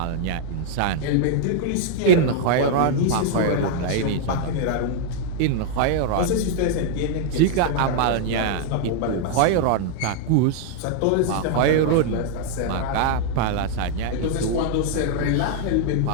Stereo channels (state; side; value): different; both; correlation -0.01